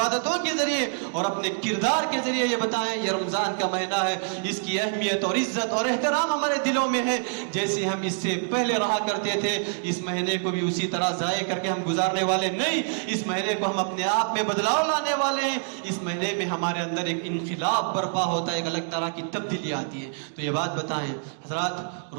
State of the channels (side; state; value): left; silent; 61 dB below the other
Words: کے ذریعے اور اپنے کردار کے ذریعے یہ بتائیں یہ رمضان کا مہینہ ہے، اس کی اہمیت اور عزت اور احترام ہمارے دلوں میں ہے۔ جیسے ہم اس سے پہلے رہا کرتے تھے، اس مہینے کو بھی اسی طرح ضائع کر کے ہم گزارنے والے نہیں، اس مہینے کو ہم اپنے آپ میں بدلاؤ لانے والے ہیں۔ اس مہینے میں ہمارے اندر ایک انقلاب برپا ہوتا ہے، ایک الگ طرح کی تبدیلی آتی ہے۔ تو یہ بات بتائیں حضرات،